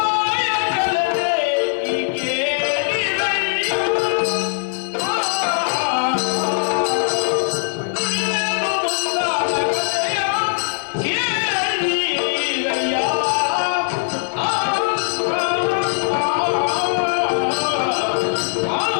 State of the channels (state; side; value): silent; right; digital silence